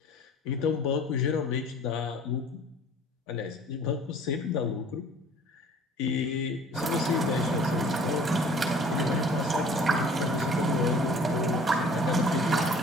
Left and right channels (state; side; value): normal; both; correlation 0.50